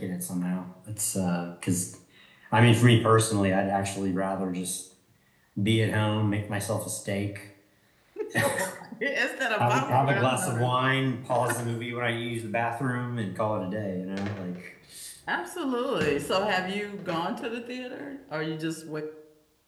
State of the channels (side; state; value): both; identical; correlation 1.00